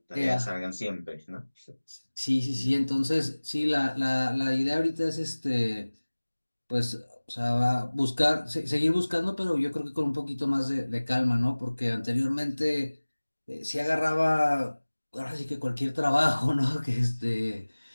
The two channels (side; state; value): both; inverted; correlation -1.00